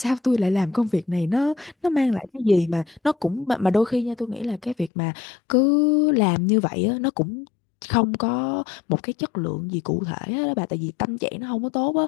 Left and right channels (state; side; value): drops out; right; at 4.9 s